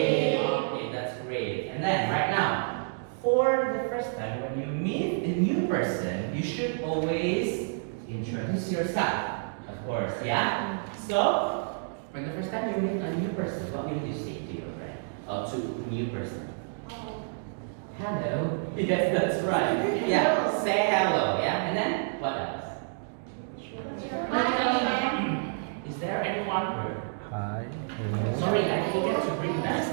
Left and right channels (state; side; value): silent; left; digital silence